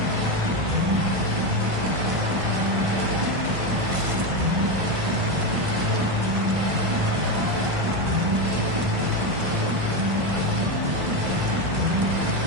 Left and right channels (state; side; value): late; left; 1.5 ms